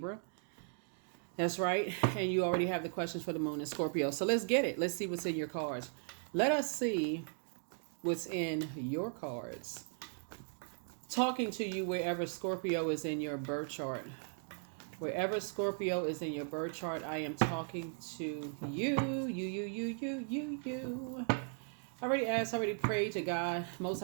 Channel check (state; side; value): silent; left; 53 dB below the other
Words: That's right. And you already have the questions for the moon in Scorpio. So let's get it. Let's see what's in your cards. Let us see what's in your cards. Talking to you wherever Scorpio is in your birth chart. Wherever Scorpio is in your birth chart, I am talking to you. Already prayed to God, Most